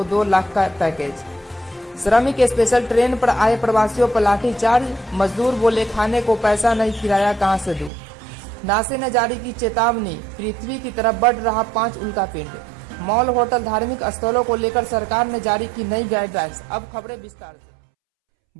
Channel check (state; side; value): drops out; left; at 7.9 s